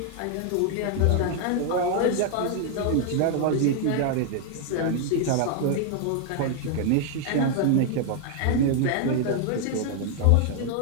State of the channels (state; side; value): different; both; correlation 0.00